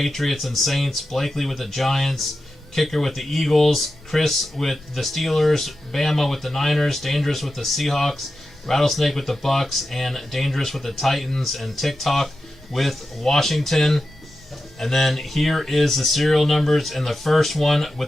and Saints. Blakely with the Giants. Kicker with the Eagles. Chris with the Steelers. Bama with the Niners. Dangerous with the Seahawks. Rattlesnake with the Bucks. And Dangerous with the Titans. And TikTok with Washington. And then here is the serial numbers in the first one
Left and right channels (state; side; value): normal; both; correlation 0.91